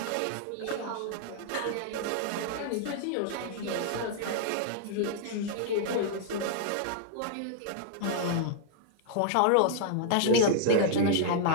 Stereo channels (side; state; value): both; different; correlation -0.01